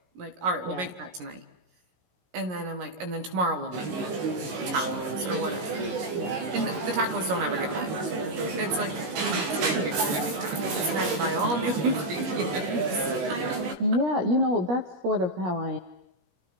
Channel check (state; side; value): late; left; 17 ms